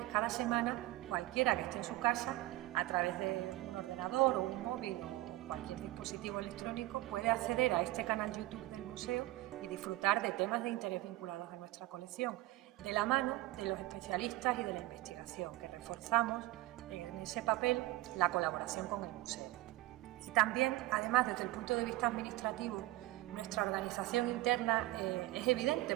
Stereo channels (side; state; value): left; quieter; 17.7 dB